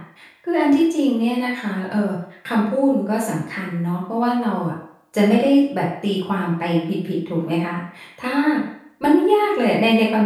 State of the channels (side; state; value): both; identical; correlation 1.00